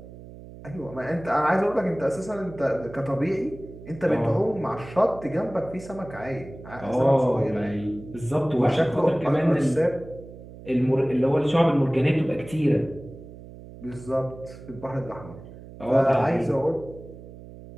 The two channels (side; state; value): right; noise; hum, 16 dB below the sound